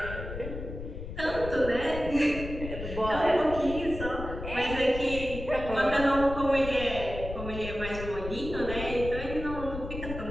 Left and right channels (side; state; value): left; noise; rumble, 8 dB below the sound